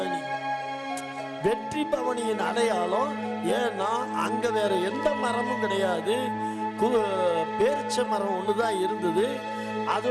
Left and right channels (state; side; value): identical; both; correlation 1.00